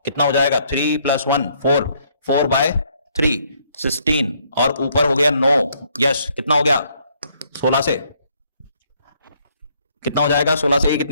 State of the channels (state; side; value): inverted; both; correlation -0.68